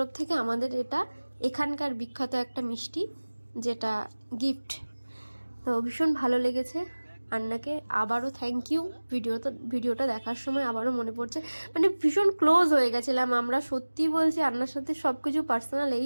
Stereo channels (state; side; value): inverted; both; correlation -1.00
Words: থেকে আমাদের এটা এখানকার বিখ্যাত একটা মিষ্টি, যেটা গিফট। তো ভীষণ ভালো লেগেছে আন্নাকে। আবারও থ্যাংক ইউ। ভিডিওটা দেখার সময় আবারও মনে পড়ছে, মানে ভীষণ ক্লোজ হয়ে গেছিলাম আমরা, সত্যি বলছি। আন্নার সাথে সব কিছু পার্সোনাল এই